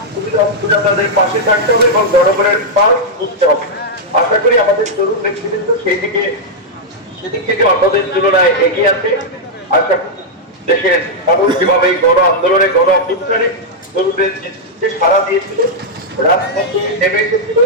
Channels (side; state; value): both; normal; correlation -0.05